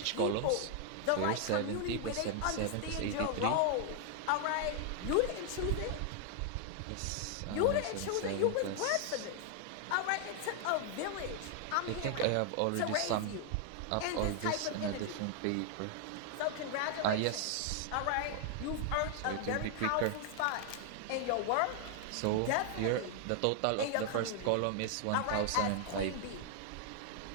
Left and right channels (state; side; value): different; both; correlation 0.00